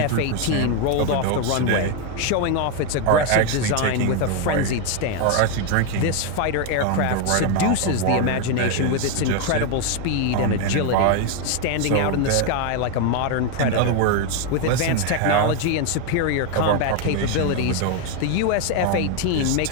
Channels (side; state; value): both; different; correlation 0.01